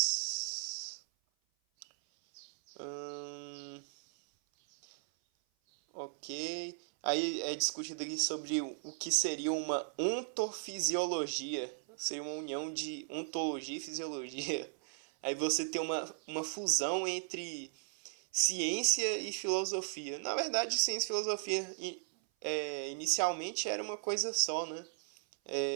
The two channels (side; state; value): left; silent; 53 dB below the other